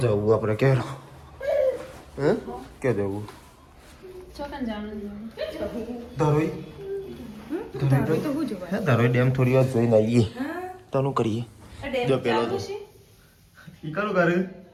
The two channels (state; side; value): identical; both; correlation 1.00